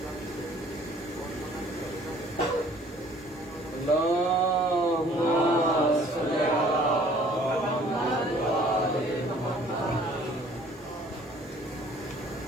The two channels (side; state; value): both; normal; correlation 0.55